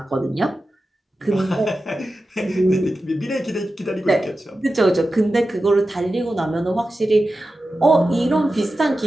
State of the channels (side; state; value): both; normal; correlation 0.93